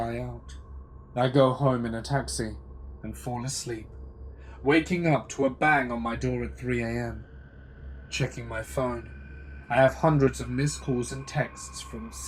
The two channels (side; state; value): both; identical; correlation 1.00